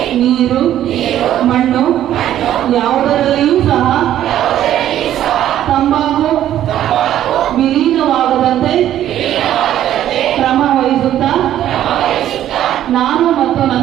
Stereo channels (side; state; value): left; quieter; 11.8 dB